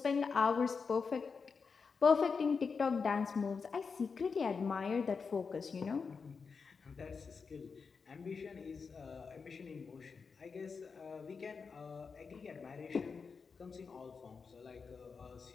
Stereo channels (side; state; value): right; quieter; 5.3 dB